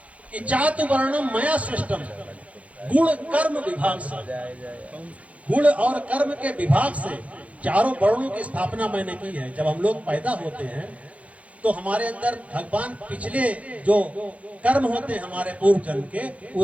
कि चातु वर्णम मया सृष्टम, गुण कर्म विभाग से, गुण और कर्म के विभाग से चारों वर्णों की स्थापना मैंने की है। जब हम लोग पैदा होते हैं तो हमारे अंदर भगवान पिछले जो कर्म होते हैं हमारे पूर्व जन्म के,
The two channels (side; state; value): left; late; 0.066 ms